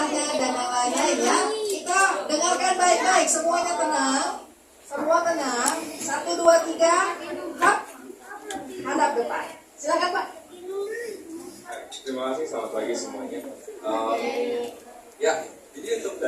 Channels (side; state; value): both; identical; correlation 1.00